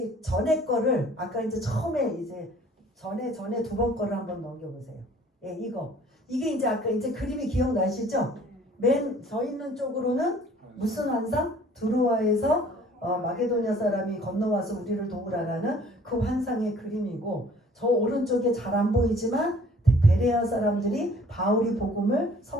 전에 거를 아까 이제 처음에 이제 전에 두 번 거를 한번 넘겨보세요. 예, 이게 이제 아까 이제 그림이 기억나시죠? 맨 서 있는 쪽으로는 무슨 환상? 두루와에서 마게도냐 사람이 건너와서 우리를 도우라라는 그 환상의 그림이고 저 오른쪽에 잘 안 보이지만 베레아 사람들이 바울이 복음을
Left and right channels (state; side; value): normal; both; correlation 0.54